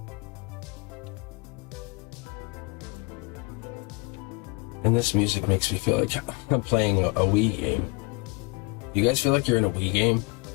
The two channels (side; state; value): right; quieter; 26.8 dB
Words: And this music makes me feel like I'm playing a Wii game. You guys feel like you're in a Wii game?